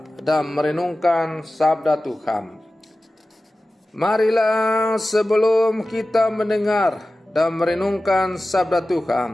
dan merenungkan sabda Tuhan. Marilah sebelum kita mendengar dan merenungkan sabda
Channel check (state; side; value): normal; both; correlation 0.95